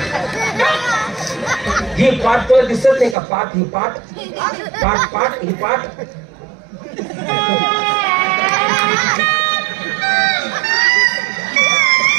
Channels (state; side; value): drops out; left; at 3.2 s